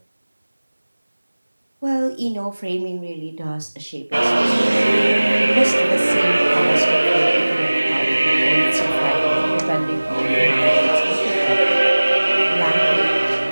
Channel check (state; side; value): inverted; both; correlation -1.00